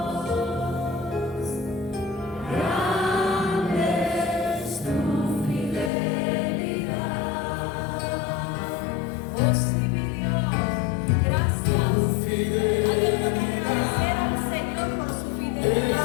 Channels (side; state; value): right; drops out; at 5.9 s